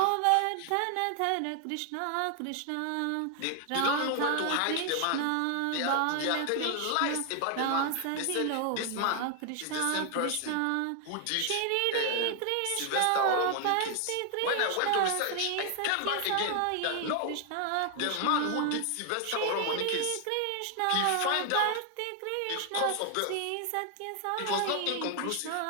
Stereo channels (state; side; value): different; both; correlation 0.00